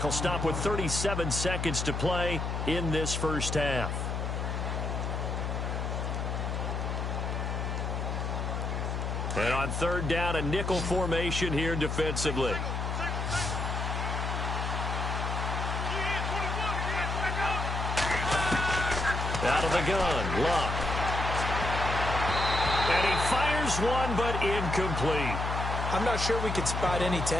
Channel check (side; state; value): left; noise; hum, 2 dB below the sound